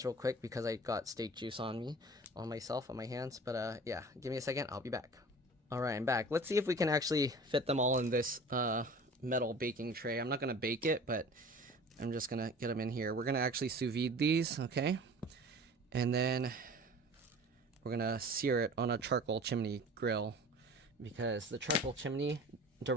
real quick because I got steak juice on myself, on my hands. But yeah, give me a second. I'll be back. All right, I'm back. Let's see if we can actually fit them all in this metal baking tray. I'm not gonna bake it, but I'm just gonna get them in here. We're gonna actually sous vide these, okay? And then we're gonna sear it on a charcoal chimney grill because the charcoal chimney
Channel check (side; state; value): both; normal; correlation 0.42